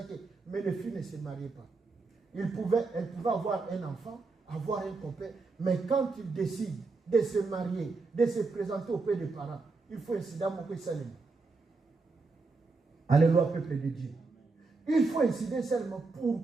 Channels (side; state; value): left; quieter; 4.0 dB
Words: mais les filles ne se mariaient pas. Elle pouvait avoir un enfant, avoir un copain, mais quand il décide de se marier, de se présenter auprès des parents, il faut incident mon Salem. Alléluia, peuple de Dieu. Il faut incident seulement.